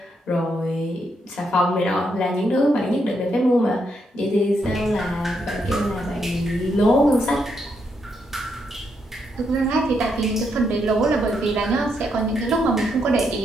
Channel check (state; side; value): normal; both; correlation 0.78